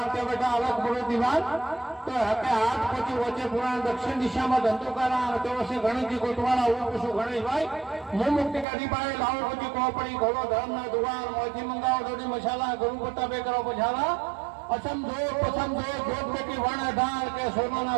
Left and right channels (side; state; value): left; drops out; at 8.7 s